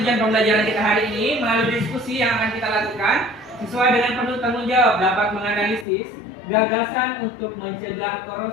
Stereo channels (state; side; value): drops out; right; at 5.9 s